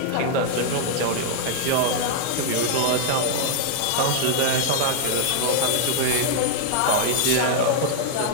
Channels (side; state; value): both; different; correlation -0.01